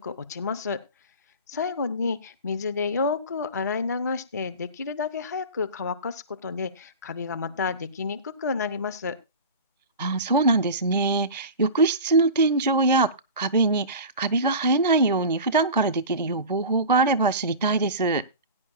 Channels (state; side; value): inverted; both; correlation -0.31